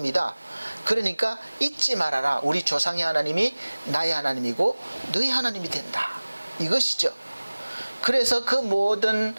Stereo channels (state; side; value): inverted; both; correlation -1.00